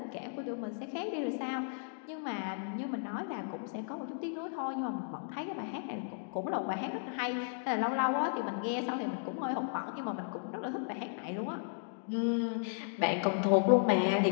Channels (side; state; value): right; silent; digital silence